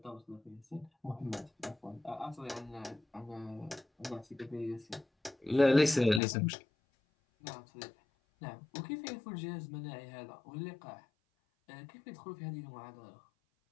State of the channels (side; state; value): right; drops out; at 6.2 s